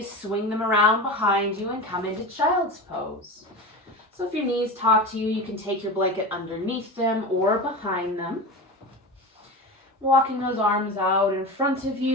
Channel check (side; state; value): both; normal; correlation 0.27